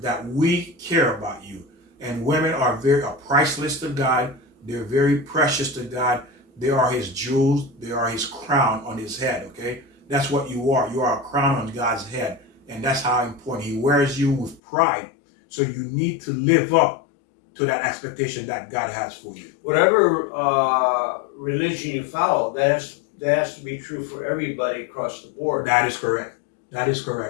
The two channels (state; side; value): drops out; right; at 14.6 s